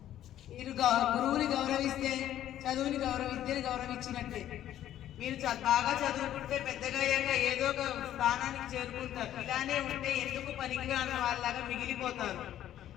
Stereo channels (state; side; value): quieter; right; 11.9 dB